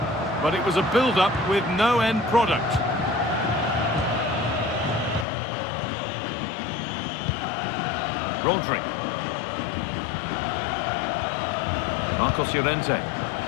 But it was a build-up with no end product. Rodri. Marcos Llorente.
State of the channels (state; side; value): drops out; right; at 5.2 s